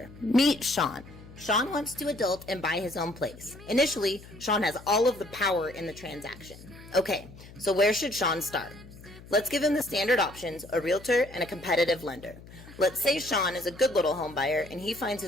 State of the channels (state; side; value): noise; left; hum, 18 dB below the sound